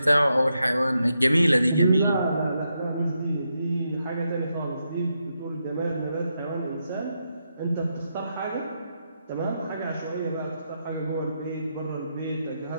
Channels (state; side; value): inverted; both; correlation -0.83